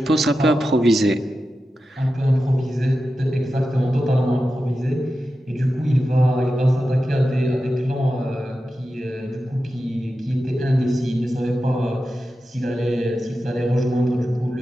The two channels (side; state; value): both; normal; correlation 0.91